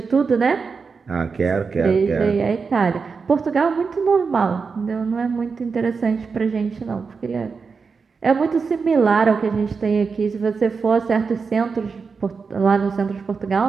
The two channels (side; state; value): left; quieter; 5.1 dB